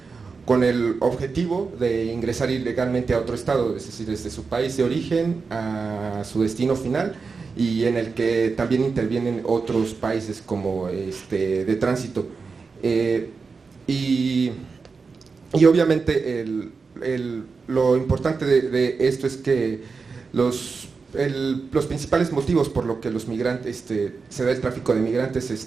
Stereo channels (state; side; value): quieter; left; 4.8 dB